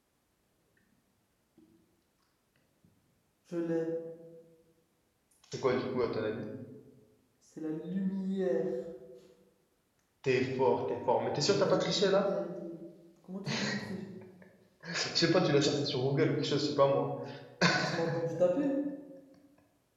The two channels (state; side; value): identical; both; correlation 1.00